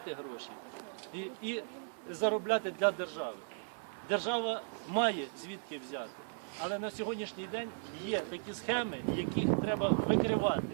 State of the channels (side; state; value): left; silent; 54 dB below the other